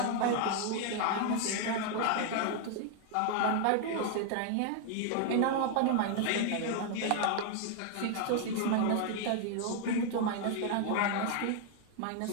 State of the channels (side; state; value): both; different; correlation 0.00